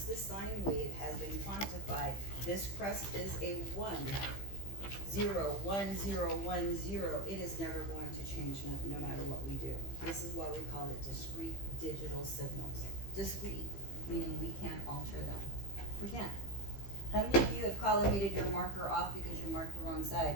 the sine wave has been quantified, this crest is a 1, 0, 1, 0, 1, 0. It is never going to change no matter what we do. This is why we call it discrete digital signals. Discrete, meaning we can't alter them. We can't. How many of you have collimated your marker off because you marked the wrong side?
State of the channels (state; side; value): late; right; 15 ms